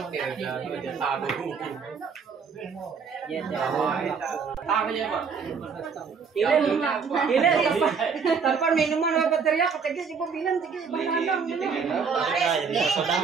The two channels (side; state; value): left; quieter; 5.8 dB